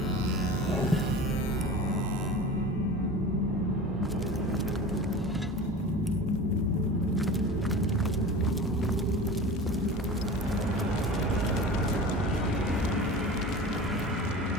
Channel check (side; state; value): both; normal; correlation 0.34